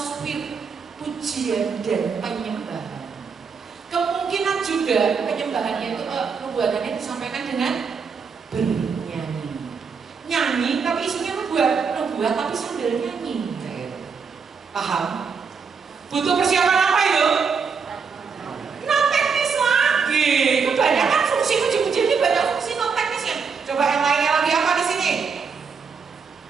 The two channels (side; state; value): left; quieter; 5.7 dB